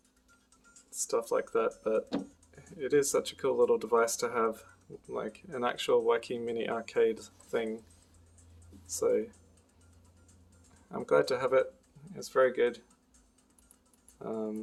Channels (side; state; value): both; identical; correlation 1.00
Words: stuff like that, but it is such a cool little device to have, like an actual wacky mini arcade thing. So I'm glad to have it. It's very good.